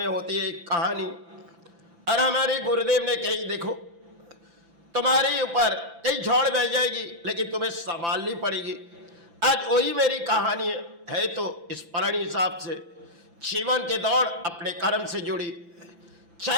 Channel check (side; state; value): left; late; 5.9 ms